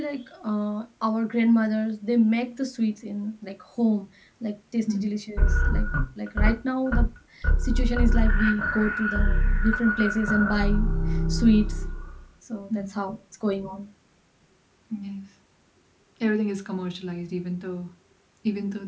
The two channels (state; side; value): identical; both; correlation 1.00